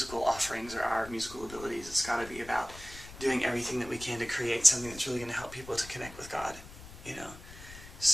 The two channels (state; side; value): noise; left; rumble, 16 dB below the sound